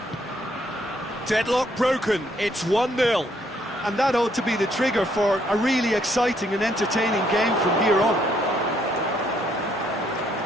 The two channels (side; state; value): both; normal; correlation 0.70